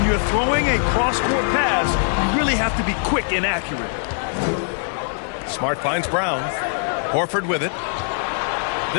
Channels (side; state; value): right; silent; 64 dB below the other